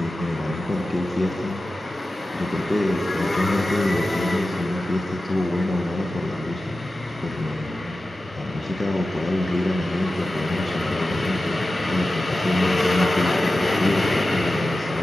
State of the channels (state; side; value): normal; both; correlation 0.94